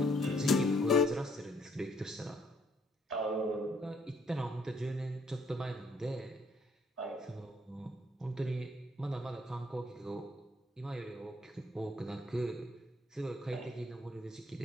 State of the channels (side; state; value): both; normal; correlation 0.67